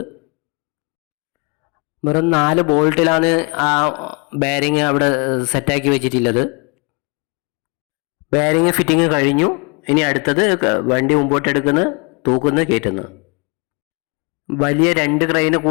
വെറും 4 ബോൾട്ടിലാണ് ആ ബെയറിങ് അവിടെ സെറ്റാക്കി വെച്ചിട്ടുള്ളത്. ബെയറിങ് ഫിറ്റിങ് കഴിഞ്ഞു. ഇനി അടുത്തത് വണ്ടി മുമ്പോട്ടെടുക്കുന്ന, തൂക്കുന്ന, കയറ്റുന്നു. വലിയ 2 ക്രെയിന്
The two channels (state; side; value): quieter; right; 32.0 dB